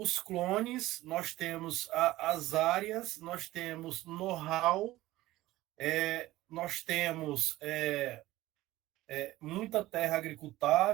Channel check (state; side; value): quieter; left; 16.9 dB